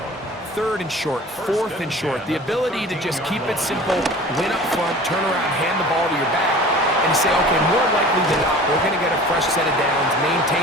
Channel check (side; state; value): both; normal; correlation 0.42